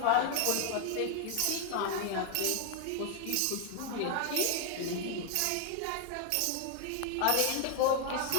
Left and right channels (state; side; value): different; both; correlation 0.00